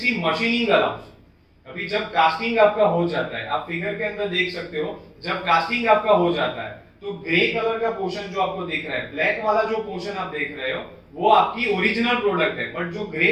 machining allowance. अभी जब कास्टिंग आपका हो जाता है, आप फिगर के अंदर देख सकते हो, जब कास्टिंग आपका हो जाता है तो ग्रे कलर का पोर्शन जो आपको दिख रहा है, ब्लैक वाला जो पोर्शन आप देख रहे हो वो आपकी ओरिजिनल प्रोडक्ट है, बट जो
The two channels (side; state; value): both; identical; correlation 1.00